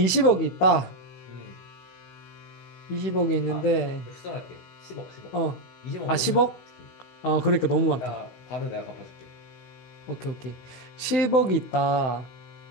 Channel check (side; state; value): right; late; 16 ms